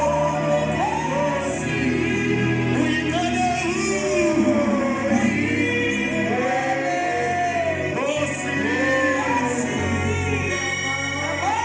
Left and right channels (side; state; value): both; identical; correlation 1.00